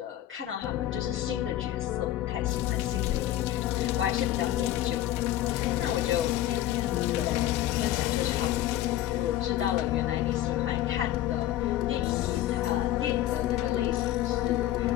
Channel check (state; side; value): quieter; right; 13.5 dB